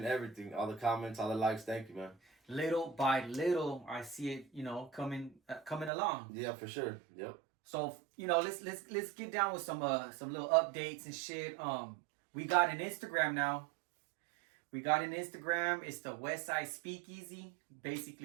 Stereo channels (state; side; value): drops out; left; at 5.9 s